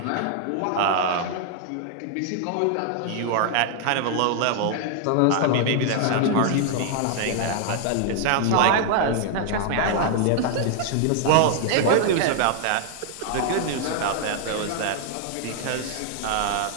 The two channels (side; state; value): both; different; correlation -0.01